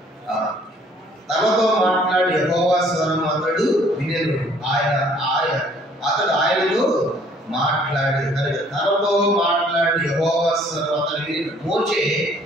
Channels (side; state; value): both; normal; correlation 0.59